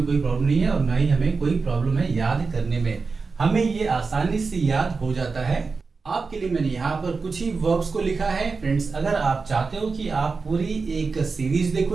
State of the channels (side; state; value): left; quieter; 4.5 dB